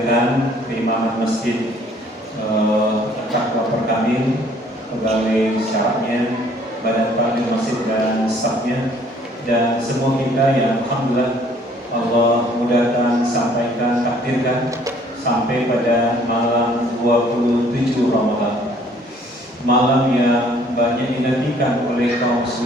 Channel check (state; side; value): normal; both; correlation 0.59